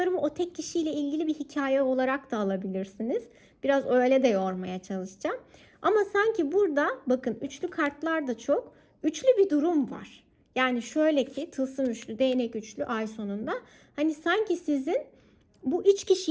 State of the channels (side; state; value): both; identical; correlation 1.00